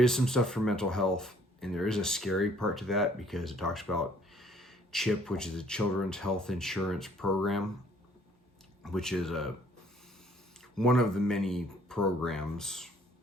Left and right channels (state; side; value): normal; both; correlation 0.60